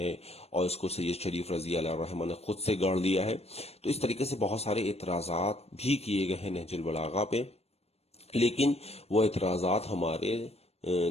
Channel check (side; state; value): right; late; 0.30 ms